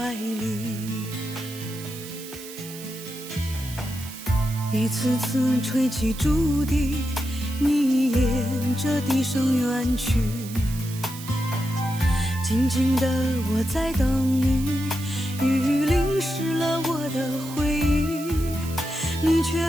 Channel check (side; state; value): right; noise; hiss, 14 dB below the sound